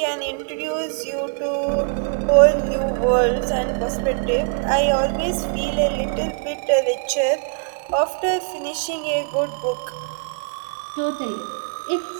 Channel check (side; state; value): left; quieter; 38.7 dB